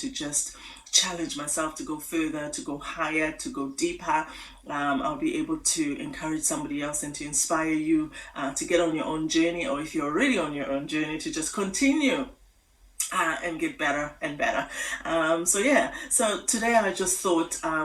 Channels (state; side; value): identical; both; correlation 1.00